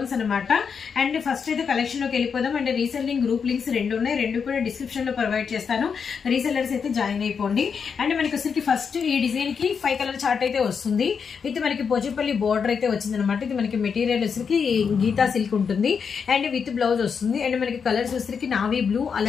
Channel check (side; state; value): right; quieter; 6.3 dB